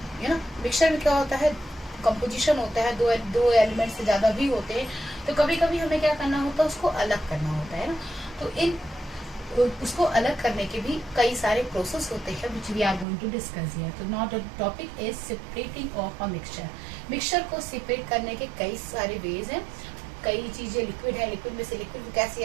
you know, mixture में क्या होता है, कंपोजिशन होता है, दो एलिमेंट से ज्यादा भी होते हैं, तो कभी कभी हमें क्या करना होता है, उसको अलग करना होता है ना। तो इन उसको अलग करने के भी कई सारे प्रोसेस होते हैं which we are going to discuss here. तो not the topic is separating of a mixture. Mixture को सेपरेट करने के कई सारे वेज हैं। कई चीजें लिक्विड है, लिक्विड में से लिक्विड को कैसे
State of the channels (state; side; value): drops out; left; at 13.1 s